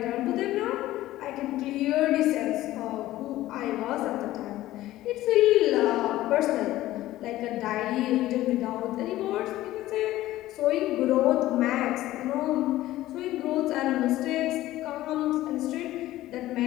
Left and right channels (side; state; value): right; quieter; 15.5 dB